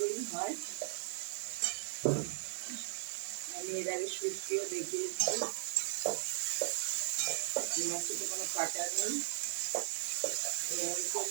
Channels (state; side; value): silent; left; digital silence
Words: হয়। আমি এর আগে শুক্তিও দেখিয়েছি। এই মাছটাতে কোনো কাটা নেই। আমি